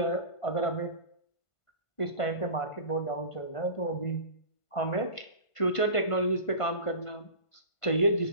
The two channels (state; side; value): late; right; 1.5 ms